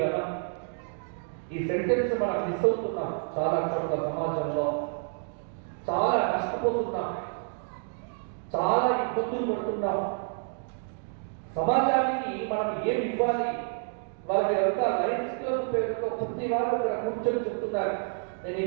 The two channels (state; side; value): silent; left; 59 dB below the other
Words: ఈ సెంటెన్స్ మనం మిస్ అవుతున్నాం చాలా చోట్ల. సమాజంలో చాలా నష్టపోతున్నాం, చాలా ఇబ్బందులు పడుతున్నాం. సమాజానికి మనం ఏం ఇవ్వాలి? వాళ్ళంతా లయన్స్ క్లబ్ పేరుతో ప్రతి వారు ఇక్కడ కూర్చొని చెప్తున్నారు, నేను